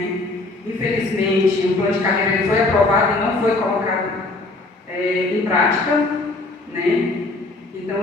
Infelizmente, o plano de carreira ele foi aprovado e não foi colocado em prática, né? Então,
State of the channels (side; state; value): right; quieter; 3.1 dB